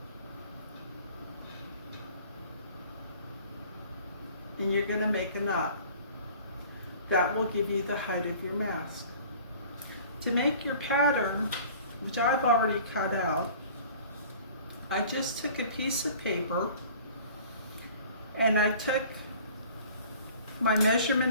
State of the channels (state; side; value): inverted; both; correlation -0.48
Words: and you're going to make a knot. That will give you the height of your mask. To make your pattern, which I've already cut out, I just took a piece of paper and I took my